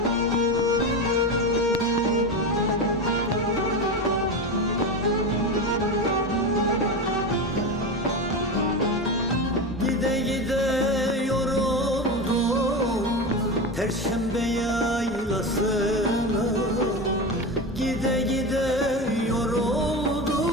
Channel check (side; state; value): both; normal; correlation 0.21